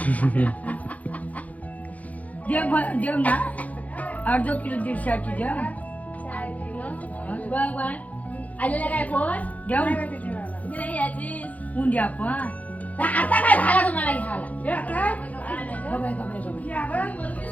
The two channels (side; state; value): right; late; 0.072 ms